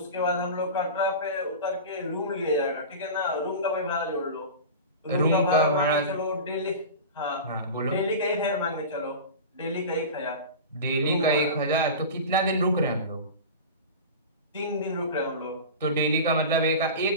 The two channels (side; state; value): both; inverted; correlation -0.30